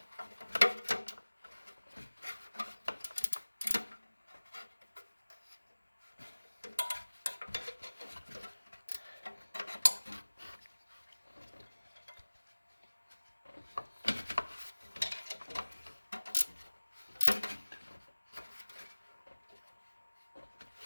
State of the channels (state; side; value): inverted; both; correlation -1.00